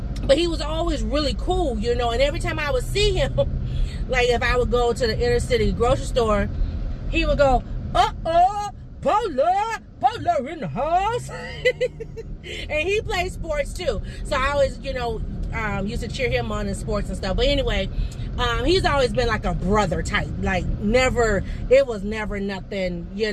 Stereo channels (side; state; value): both; identical; correlation 1.00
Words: but he was always really cool, you know. And every time I would see him, like if I would go to the inner city grocery store, he would go, Paula in the house. And he plays sports too, so I always, you know, used to cheer him on in sports and stuff. But anyway, he's always been like a brother type. Like, never, it was never nothing,